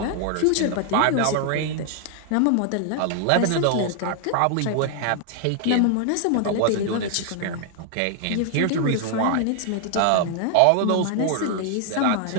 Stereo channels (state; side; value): different; both; correlation 0.00